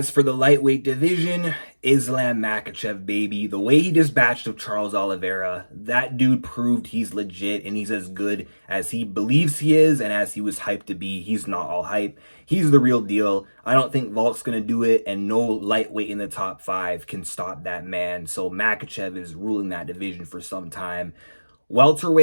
for the lightweight division, Islam Makhachev, baby. The way he dispatched of Charles Oliveira, that dude proved he's legit and he's as good as he believes he is and as he was hyped to be. He's not all hype. He's the real deal. I don't think Volk's going to do it, and no lightweight in the top 5 can stop that man. So Makhachev is ruling that division for some time.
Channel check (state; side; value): inverted; both; correlation -1.00